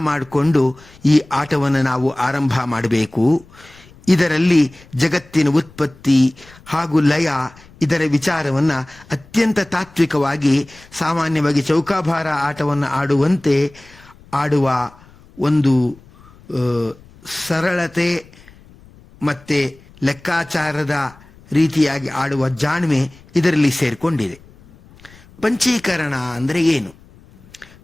ಮಾಡಿಕೊಂಡು ಈ ಆಟವನ್ನು ನಾವು ಆರಂಭ ಮಾಡಬೇಕು. ಇದರಲ್ಲಿ ಜಗತ್ತಿನ ಉತ್ಪತ್ತಿ ಹಾಗೂ ಲಯ ಇದರ ವಿಚಾರವನ್ನು ಅತ್ಯಂತ ತಾತ್ವಿಕವಾಗಿ, ಸಾಮಾನ್ಯವಾಗಿ ಚೌಕಾಬಾರ ಆಟವನ್ನು ಆಡುವಂತೆ ಆಡುವ ಒಂದು ಸರಳತೆ ಮತ್ತು ಲೆಕ್ಕಾಚಾರದ ರೀತಿಯಾಗಿ ಆಡುವ ಜಾಣ್ಮೆ ಇದರಲ್ಲಿ ಸೇರಿಕೊಂಡಿದೆ. ಪಂಚೀಕರಣ ಅಂದರೆ ಏನು?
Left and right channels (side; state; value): left; noise; rumble, 25 dB below the sound